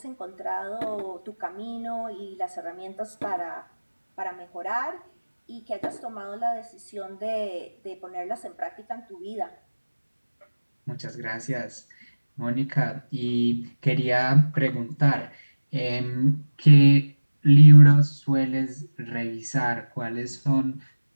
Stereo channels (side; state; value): both; inverted; correlation -1.00